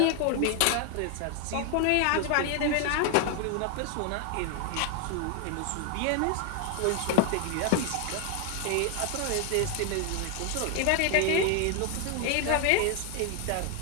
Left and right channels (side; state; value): both; different; correlation 0.00